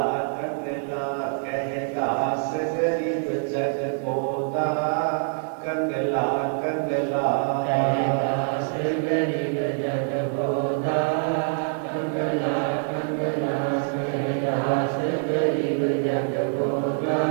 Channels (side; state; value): left; silent; digital silence